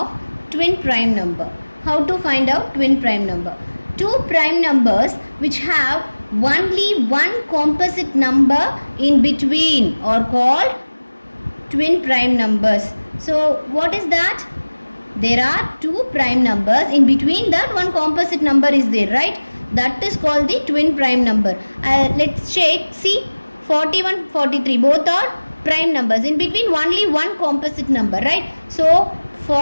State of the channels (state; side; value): inverted; both; correlation -1.00